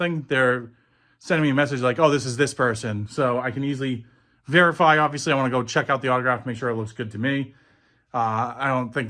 they're sending me a message like, oh, this is this person. So I can easily verify. Obviously, I want to go check out the autograph, make sure it looks good to me. I don't think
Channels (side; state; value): both; identical; correlation 1.00